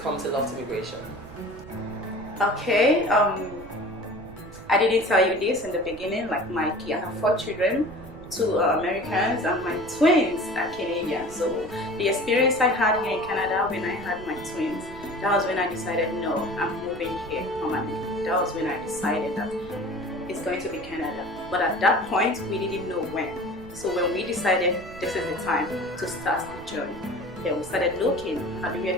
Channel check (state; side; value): noise; right; rumble, 17 dB below the sound